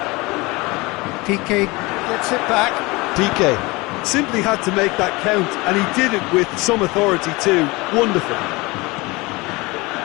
Piqué gets it back. Piqué simply had to make that count, and he did it with some authority too. Wonderful.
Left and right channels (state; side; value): quieter; right; 23.5 dB